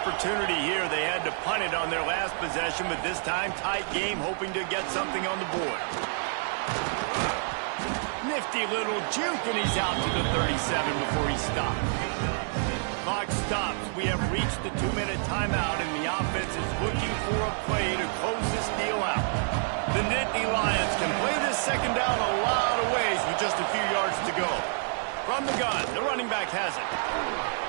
here. They had to punt it on their last possession, but this time tight game, hoping to get something on the board. Nifty little juke, and he's out to the 37 before he stops. Clock stops. We have reached the 2-minute timeout, and the offense is looking for a play to close this deal out. The Nittany Lions can play this second down a lot of ways with just a few yards to go. From the gun, the running back has it.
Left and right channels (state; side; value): silent; left; 59 dB below the other